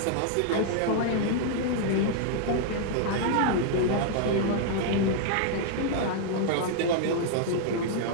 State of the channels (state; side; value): different; both; correlation 0.00